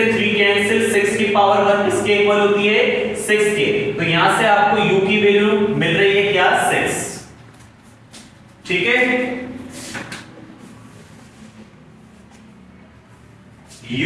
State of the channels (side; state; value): both; identical; correlation 1.00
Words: 3 कैंसिल, 6 की पावर 1 किसके इक्वल होती है 6 के। तो यहां से आपको u की वैल्यू मिल रही है क्या 6। ठीक है?